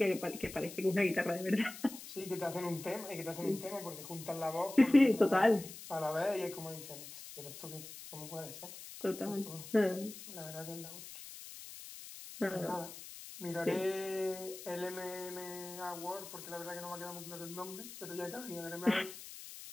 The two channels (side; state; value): left; noise; hiss, 13 dB below the sound